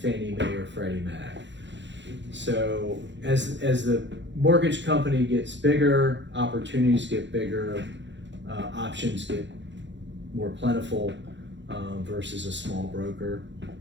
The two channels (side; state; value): left; late; 0.53 ms